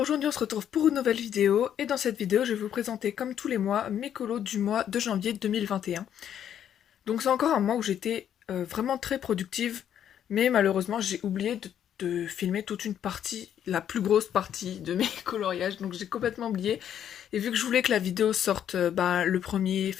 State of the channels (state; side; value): quieter; right; 9.7 dB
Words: on se retrouve pour une nouvelle vidéo et dans cette vidéo je vais vous présenter comme tous les mois mes colos du mois de janvier 2021. Donc c'est encore un mois où j'étais vraiment très productive, mais malheureusement j'ai oublié de filmer toute une partie, la plus grosse partie de mes coloriages, donc j'ai complètement oublié. Et vu que je voulais que la vidéo sorte le 1er